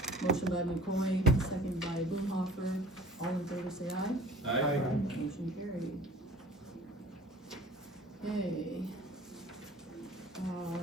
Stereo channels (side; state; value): both; normal; correlation 0.45